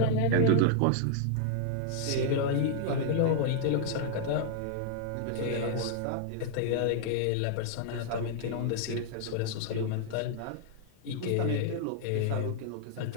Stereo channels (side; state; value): both; different; correlation -0.01